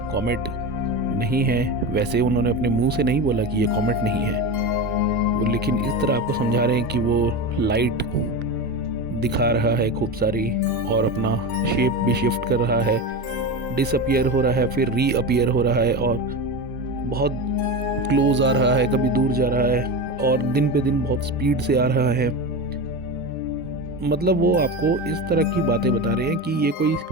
कॉमेट नहीं है। वैसे उन्होंने अपने मुंह से नहीं बोला कि ये कॉमेट नहीं है वो, लेकिन इस तरह आपको समझा रहे हैं कि वो लाइट दिखा रहा है खूब सारी और अपना शेप भी शिफ्ट कर रहा है, डिसअपियर हो रहा है, फिर रीअपियर हो रहा है और बहुत क्लोज आ रहा है, कभी दूर जा रहा है और दिन पे दिन बहुत स्पीड से आ रहा है। मतलब वो आपको इस तरह की बातें बता रहे हैं कि ये कोई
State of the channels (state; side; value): normal; both; correlation 0.22